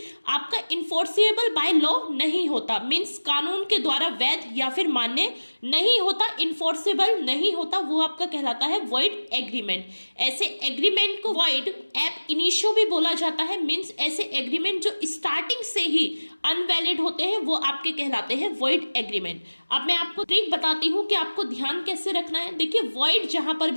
आपका इन्फोर्सेबल बाय लॉ नहीं होता, मीन्स कानून के द्वारा वैध या फिर मान्य नहीं होता, इन्फोर्सेबल नहीं होता, वो आपका कहलाता है वॉइड एग्रीमेंट। ऐसे एग्रीमेंट को वॉइड एब इनिशियो भी बोला जाता है, मीन्स ऐसे एग्रीमेंट जो स्टार्टिंग से ही अनवैलिड होते हैं वो आपके कहलाते हैं वॉइड एग्रीमेंट। अब मैं आपको ट्रिक बताती हूँ कि आपको ध्यान कैसे रखना है। देखिए, वॉइड जहां पर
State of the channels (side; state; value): both; inverted; correlation -1.00